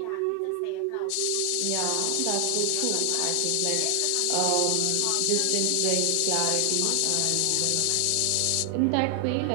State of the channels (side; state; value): both; different; correlation 0.00